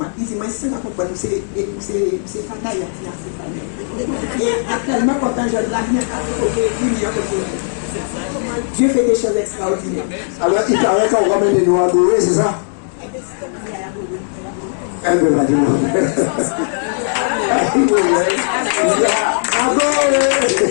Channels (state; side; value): silent; right; digital silence